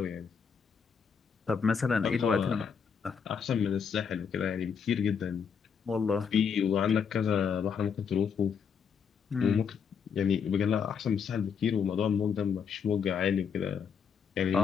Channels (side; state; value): right; quieter; 6.7 dB